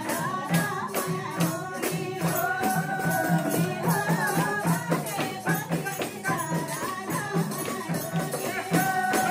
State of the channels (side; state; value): both; identical; correlation 1.00